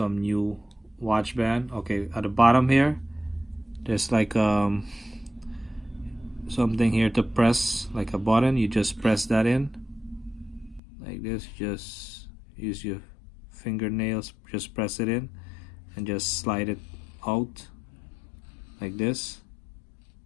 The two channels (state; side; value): drops out; right; at 10.8 s